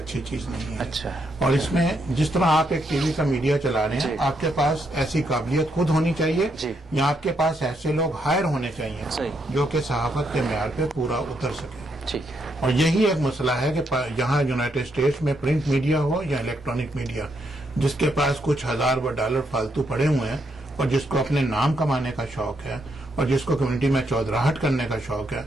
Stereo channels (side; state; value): both; normal; correlation 0.77